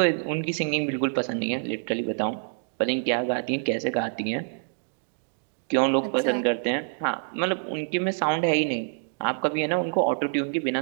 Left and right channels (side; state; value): left; silent; digital silence